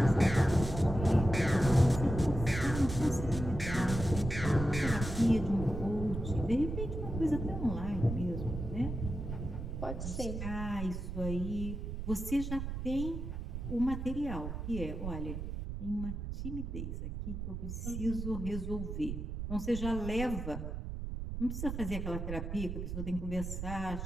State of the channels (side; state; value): right; noise; rumble, 5 dB below the sound